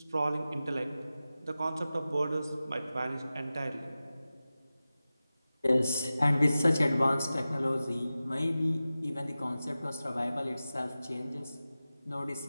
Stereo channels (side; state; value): both; inverted; correlation -0.95